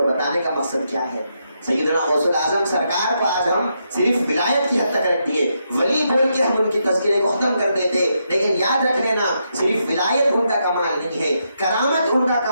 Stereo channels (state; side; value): inverted; both; correlation -0.81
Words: بتانے کا مقصد کیا ہے, سیدنا غوث الاعظم سرکار کو آج ہم صرف ولایت کی حد تک رکھ دیے, ولی بول کے ہم ان کی تذکرے کو ختم کر دیتے, لیکن یاد رکھ لینا صرف ولایت ان کا کمال نہیں ہے, کرامت ان کا